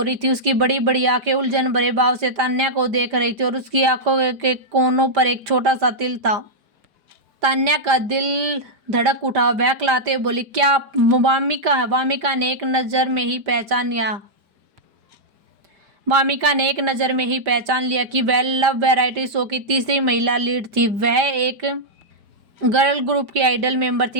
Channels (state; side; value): late; left; 5.1 ms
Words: थी। उसकी बड़ी बड़ी आंखें उलझन भरे भाव से तान्या को देख रही थी और उसकी आंखों के कोनों पर एक छोटा सा तिल था। तान्या का दिल धड़क उठा। बहकलाते बोली, क्या आप वामिका है? वामिका ने एक नज़र में ही पहचान लिया कि वह लव वैरायटी शो की तीसरी महिला लीड थी। वह एक गर्ल ग्रुप की आइडल मेंबर